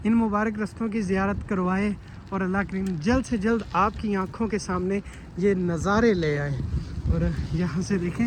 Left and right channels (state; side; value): identical; both; correlation 1.00